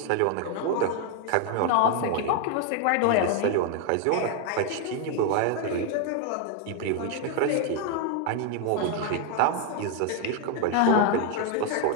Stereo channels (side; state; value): both; different; correlation 0.01